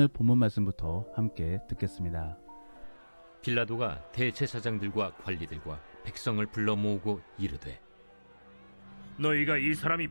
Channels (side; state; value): both; inverted; correlation -1.00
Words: 본문 말씀부터 함께 듣겠습니다. 빌라도가 대제사장들과 관리들과 백성을 불러 모으고 이르되, 너희가 이 사람이